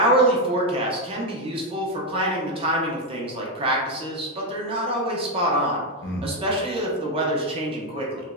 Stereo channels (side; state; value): both; normal; correlation 0.06